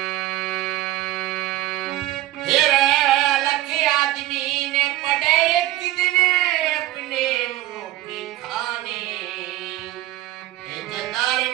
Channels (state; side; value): quieter; left; 15.9 dB